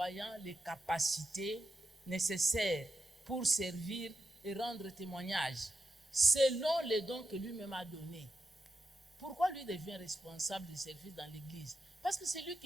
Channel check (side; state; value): both; normal; correlation 0.87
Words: les capacités nécessaires pour servir et rendre témoignage, selon les dons que lui-même a donnés. Pourquoi lui devient responsable des services dans l'Église? Parce que c'est lui